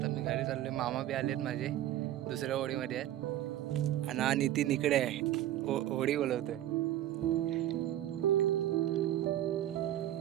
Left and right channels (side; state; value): left; quieter; 12.8 dB